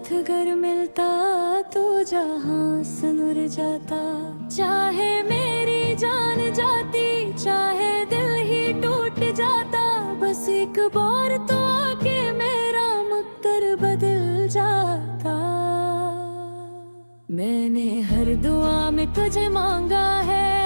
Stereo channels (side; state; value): both; inverted; correlation -1.00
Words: अगर मिलता तो जहां सुनुर जाता। चाहे मेरी जान जाती, चाहे दिल ही टूट जाता, बस एक बार तो आके मेरा मुक्तर बदल जाता। मैंने हर दुआ में तुझे मांगा है,